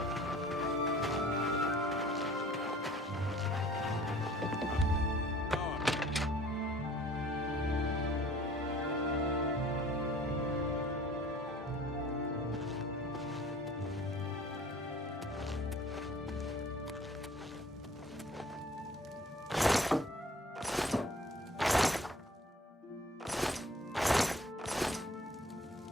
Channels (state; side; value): normal; both; correlation 0.50